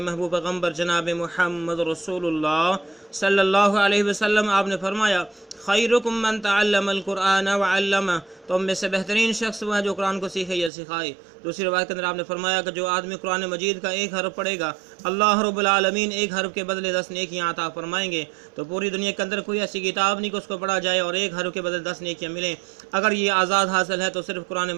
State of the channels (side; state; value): left; drops out; at 10.7 s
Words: महबूब पैगम्बर जनाब मुहम्मद रसूलुल्लाह सल्लल्लाहु अलैहि वसल्लम आपने फरमाया, खैरुकुम मन तअल्लमल कुरान व अल्लमा, तो हम में से बेहतरीन शख्स वो है जो कुरान को सीखे या सिखाए। दूसरी बात के अंदर आपने फरमाया कि जो आदमी कुरान मजीद का एक हरफ पढ़ेगा, अल्लाह रब्बुल आलमीन एक हरफ के बदले 10 नेकियां अता फरमाएंगे। तो पूरी दुनिया के अंदर कोई ऐसी किताब नहीं कि उसको पढ़ा जाए और एक हरफ के बदले 10 नेकियां मिलें। अगर ये आज़ाद हासिल है तो सिर्फ कुरान